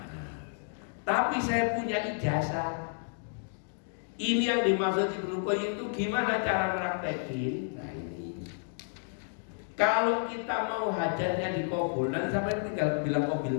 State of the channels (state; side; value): silent; right; digital silence